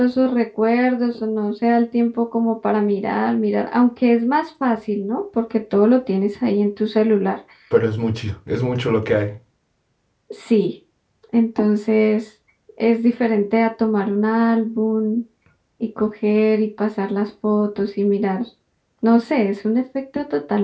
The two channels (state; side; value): identical; both; correlation 1.00